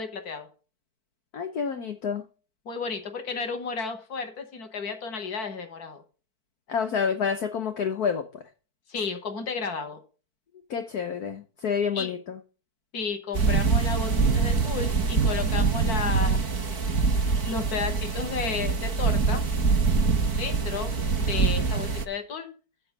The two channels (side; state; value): right; late; 4.5 ms